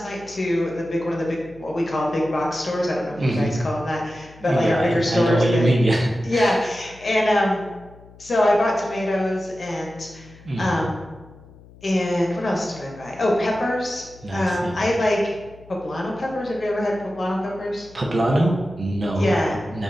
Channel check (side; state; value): left; noise; hum, 22 dB below the sound